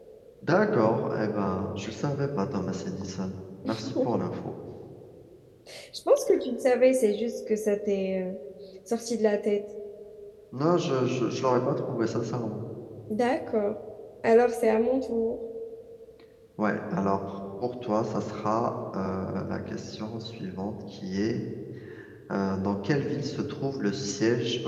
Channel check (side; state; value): both; identical; correlation 1.00